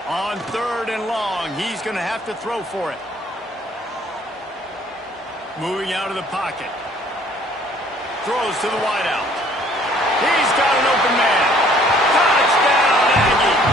On 3rd and long, he's going to have to throw for it. Moving out of the pocket. Throws to the wideout. He's got an open man. Touchdown!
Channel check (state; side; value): normal; both; correlation 0.58